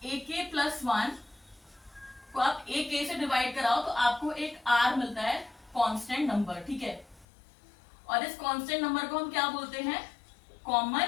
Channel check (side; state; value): right; drops out; at 7.2 s